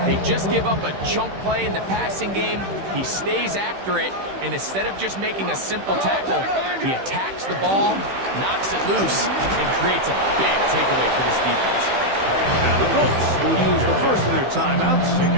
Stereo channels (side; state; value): left; late; 15 ms